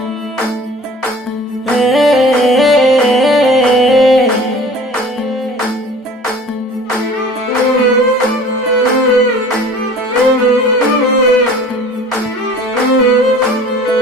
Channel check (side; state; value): both; normal; correlation 0.45